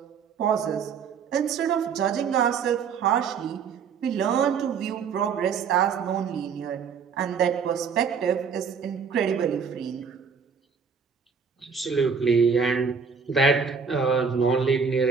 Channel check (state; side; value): quieter; left; 6.1 dB